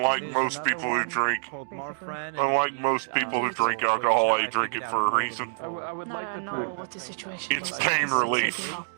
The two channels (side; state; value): left; silent; digital silence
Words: most people who drink, alcohol, I drink it for a reason. I would like to try It's pain relief.